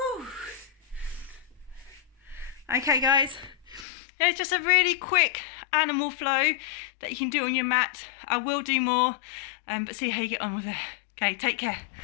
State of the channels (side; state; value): right; drops out; at 3.9 s